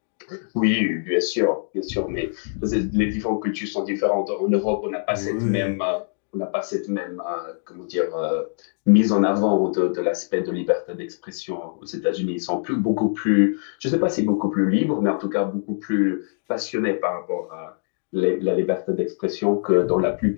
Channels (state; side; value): silent; right; digital silence